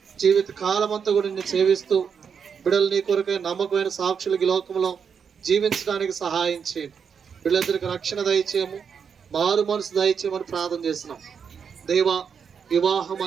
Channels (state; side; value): quieter; left; 6.7 dB